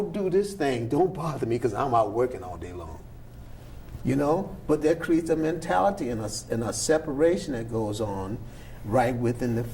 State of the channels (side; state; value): both; identical; correlation 1.00